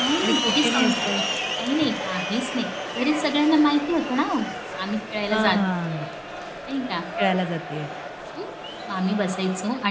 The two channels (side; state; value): both; identical; correlation 1.00